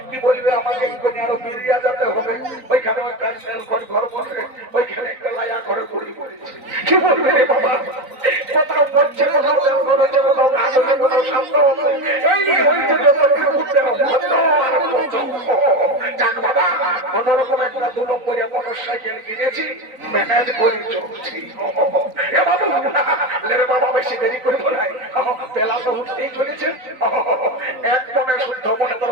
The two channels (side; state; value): left; late; 3.9 ms